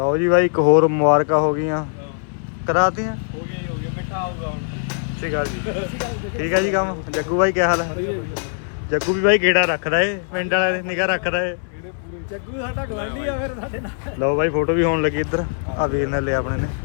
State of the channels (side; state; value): right; silent; 61 dB below the other